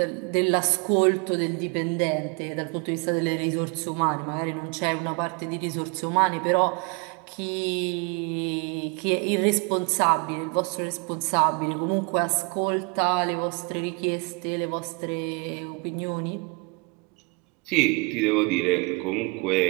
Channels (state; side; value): quieter; left; 31.0 dB